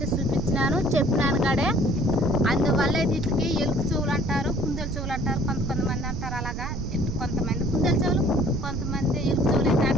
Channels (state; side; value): noise; right; rumble, 4 dB below the sound